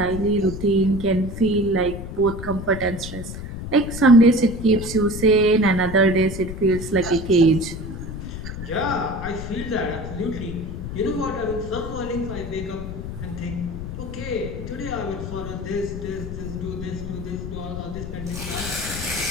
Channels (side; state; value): left; noise; rumble, 8 dB below the sound